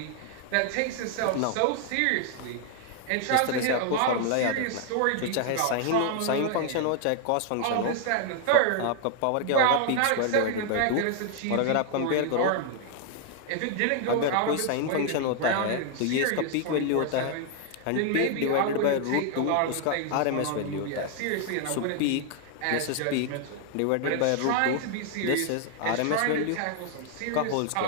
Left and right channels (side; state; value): both; different; correlation 0.00